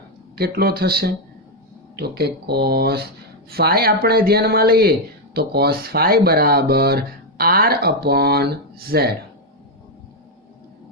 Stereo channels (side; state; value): both; normal; correlation 0.02